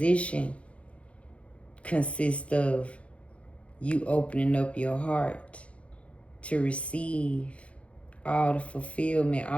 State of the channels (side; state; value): right; late; 0.062 ms